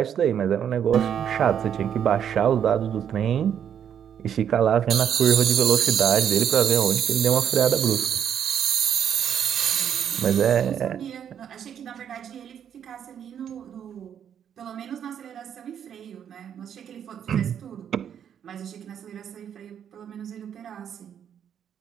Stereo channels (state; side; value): quieter; left; 8.8 dB